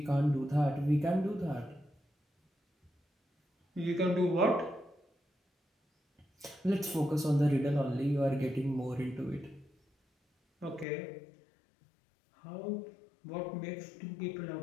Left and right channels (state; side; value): drops out; right; at 10.9 s